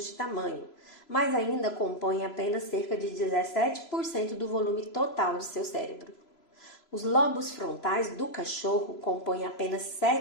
de tamanho, mas ainda compõem apenas cerca de 17% do volume total do seu cérebro. Os lobos frontais do cachorro compõem apenas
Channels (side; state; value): right; late; 3.0 ms